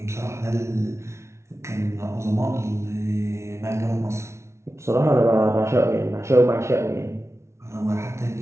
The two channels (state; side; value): late; left; 0.13 ms